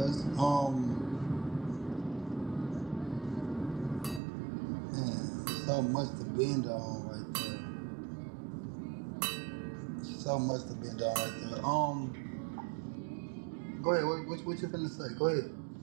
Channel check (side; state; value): left; drops out; at 4.2 s